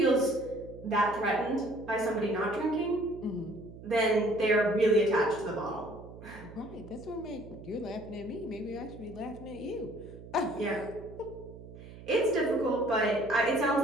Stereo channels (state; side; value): noise; right; hum, 16 dB below the sound